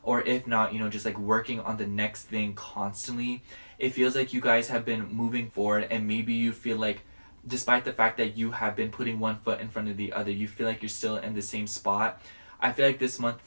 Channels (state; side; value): inverted; both; correlation -1.00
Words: or if not, just like working on the next thing constantly. It feels like you guys have been moving forward, and maybe you feel like despite the fact that you have been putting one foot in front of the other, you feel like you're still in the same spot. I feel like this month,